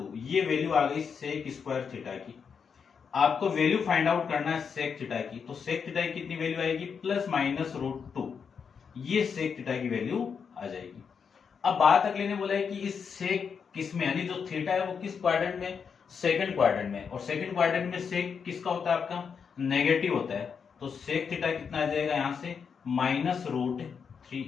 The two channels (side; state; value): right; quieter; 6.4 dB